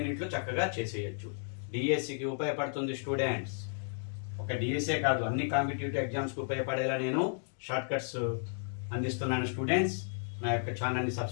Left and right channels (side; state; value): right; silent; digital silence